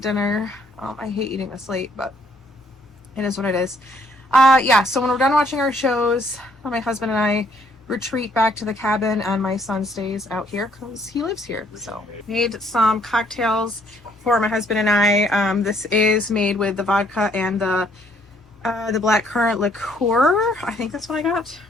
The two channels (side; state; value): both; normal; correlation 0.66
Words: I hate eating this late, but it is what it is. Yeah, so when we're done watching our shows, my husband and I retreat back to the cabin, and my son stays out here because he lives here. So made some cocktails for my husband and I. This is made with the vodka and the blackcurrant liqueur. I think that's what I got